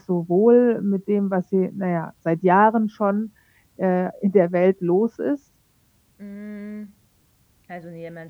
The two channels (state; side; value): identical; both; correlation 1.00